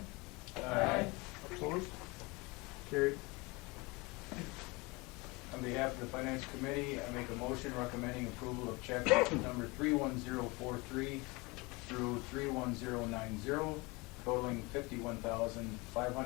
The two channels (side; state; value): right; quieter; 25.5 dB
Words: Aye. Opposed? Carried. On behalf of the Finance Committee, I make a motion recommending approval of check number 31043 through 31090, totaling